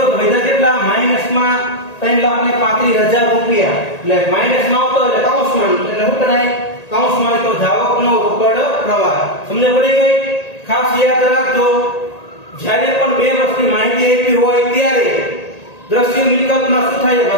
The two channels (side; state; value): right; late; 1.8 ms